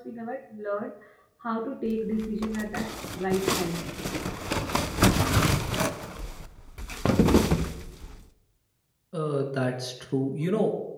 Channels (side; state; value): both; identical; correlation 1.00